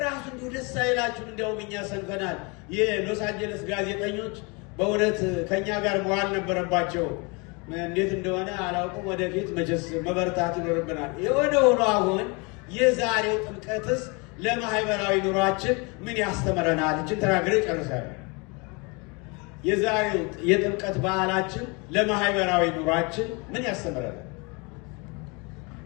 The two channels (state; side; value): quieter; right; 30.0 dB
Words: ራሱ እንዲሁ ደስ አይላችሁም? እንደውም እኛ ሰንፈናል። የሎስ አንጀለስ ጋዜጠኞች በእውነት ከኛ ጋር መዋል ነበረባቸው። እንዴት እንደሆነ አላውቅም። ወደፊት መቼስ መበርታት ይኖርብናል። የሆነ ሆኖ አሁን የዛሬው ጥምቀትስ ለማህበራዊ ኑሯችን ምን ያስተምረናል? እችን ተናግሬ ጨርሳለሁ። የዛሬው የጥምቀት በዓላችን ለማህበራዊ ኑሯችን ምን ያስተምረናል?